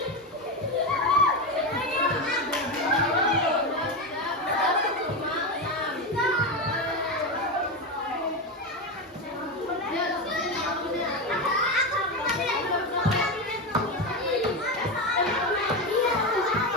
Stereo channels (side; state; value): both; normal; correlation 0.14